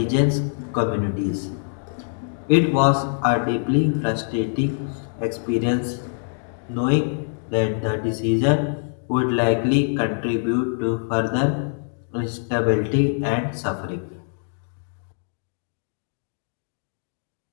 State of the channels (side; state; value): right; silent; digital silence